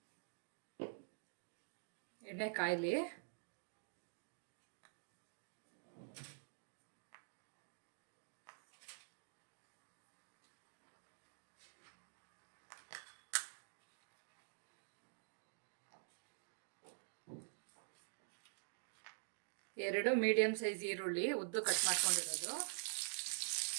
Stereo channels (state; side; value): silent; left; digital silence